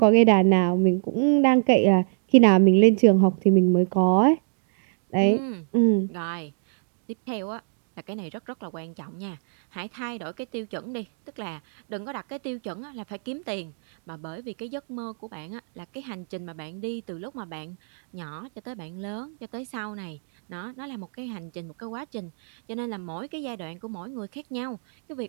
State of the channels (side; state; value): left; silent; digital silence